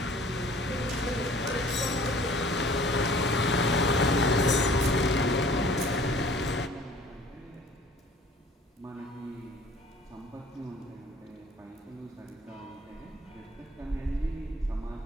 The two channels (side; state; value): both; normal; correlation 0.51